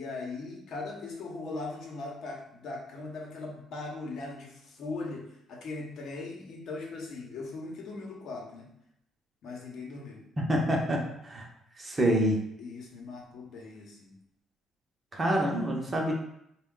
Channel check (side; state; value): both; normal; correlation 0.70